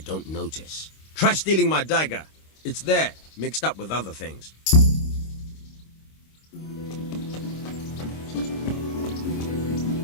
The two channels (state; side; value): late; right; 26 ms